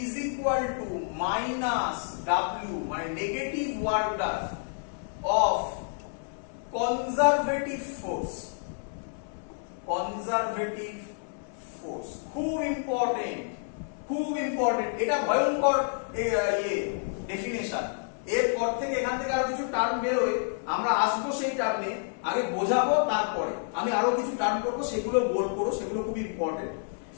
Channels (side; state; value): right; silent; 58 dB below the other